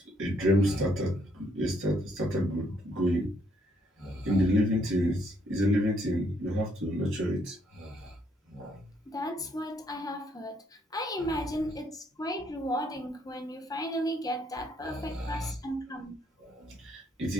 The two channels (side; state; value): both; normal; correlation 0.70